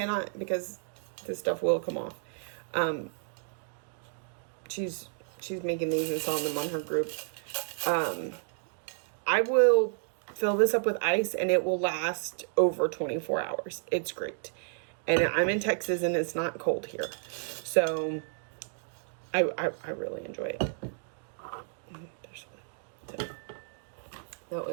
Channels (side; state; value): left; silent; digital silence